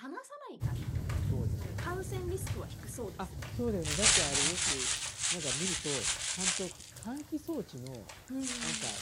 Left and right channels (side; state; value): both; identical; correlation 1.00